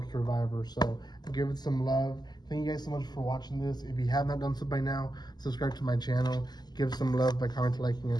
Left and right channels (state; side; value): late; right; 0.20 ms